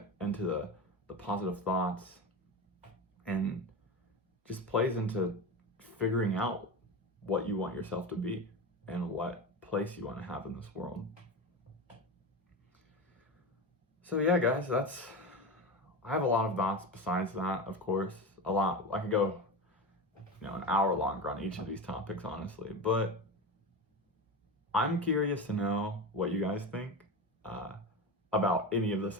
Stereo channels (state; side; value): normal; both; correlation 0.23